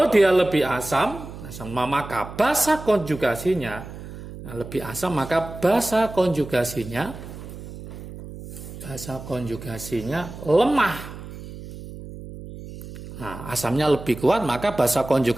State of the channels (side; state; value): right; noise; hum, 13 dB below the sound